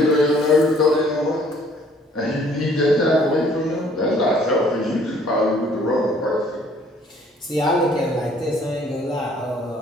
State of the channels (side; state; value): both; normal; correlation 0.59